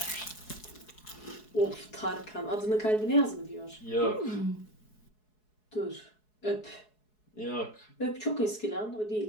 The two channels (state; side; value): late; right; 4.7 ms